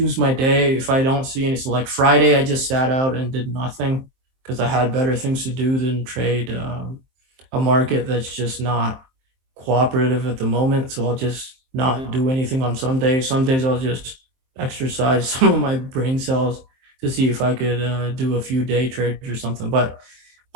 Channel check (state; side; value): late; left; 23 ms